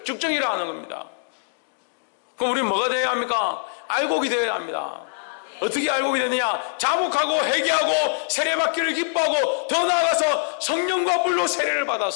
쭉정이라 하는 겁니다. 그럼 우리는 뭐가 되어야 합니까? 알곡이 되어야 합니다. 어떻게 알곡이 되느냐? 자복하고 회개하고 세례받기를 기뻐하고 더 나아가서 성령과 불로 세례를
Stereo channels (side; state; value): right; silent; digital silence